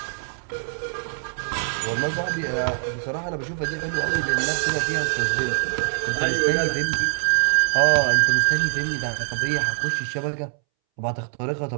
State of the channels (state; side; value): silent; left; 63 dB below the other